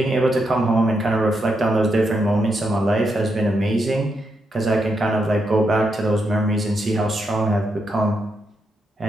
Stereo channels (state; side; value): normal; both; correlation 0.82